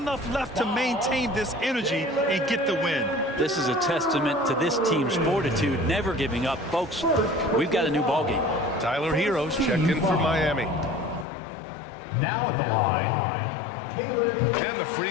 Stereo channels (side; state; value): right; drops out; at 11.2 s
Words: left to maintain this energy and get the win? This is a testament to this team's fortitude, never giving up. Folks, we've got a new ball game. Tyler Heroes checked in for Miami. Now at the line, Caleb. And the free